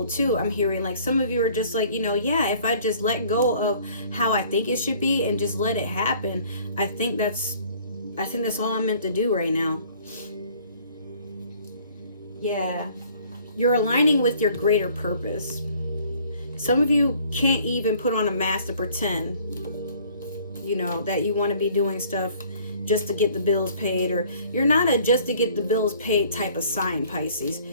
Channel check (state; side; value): inverted; both; correlation -0.55